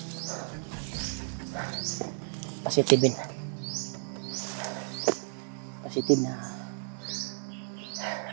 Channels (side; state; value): left; silent; digital silence